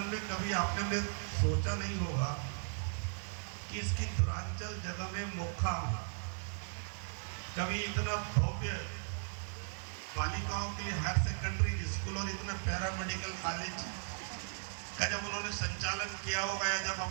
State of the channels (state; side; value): silent; left; 53 dB below the other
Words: में कभी आपने ने सोचा नहीं होगा कि इसकी दूरांचल जगह में मोखा कभी इतना भव्य बालिकाओं के लिए हायर सेकेंडरी स्कूल और इतना पैरामेडिकल कॉलेज का जब उन्होंने संचालन किया होगा या जब